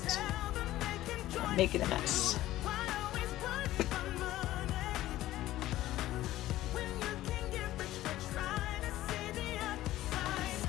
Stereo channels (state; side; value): quieter; right; 15.1 dB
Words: is. I'm making a mess.